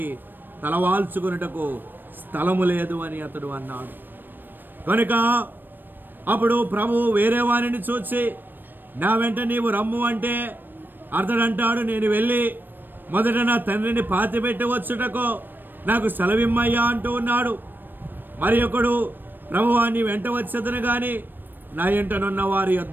తలవాల్చుకున్నటకు స్థలము లేదు అని అతడు అన్నాడు. కనుక అప్పుడు ప్రభు వేరే వారిని చూసి నా వెంట నీవు రమ్ము అంటే అతడు అంటాడు, నేను వెళ్ళి మొదట నా తండ్రిని పాతిపెట్టి వచ్చుటకు నాకు సెలవిమ్మయ్యా అంటూ ఉన్నాడు. మరి ఒకడు ప్రభువా నీ వెంట వచ్చేదను కానీ నా ఎంటనున్న వారి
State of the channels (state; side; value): late; left; 0.093 ms